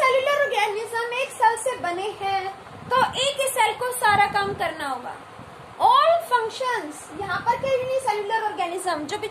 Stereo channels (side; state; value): both; identical; correlation 1.00